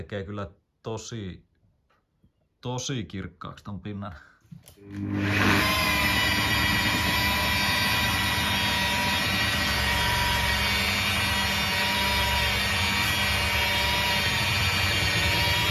kyllä tosi kirkkaaksi ton pinnan.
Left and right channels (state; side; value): identical; both; correlation 1.00